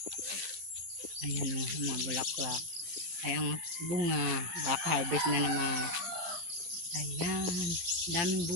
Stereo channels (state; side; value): late; left; 11 ms